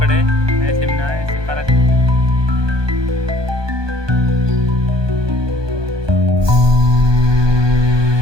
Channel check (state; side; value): late; left; 1.2 ms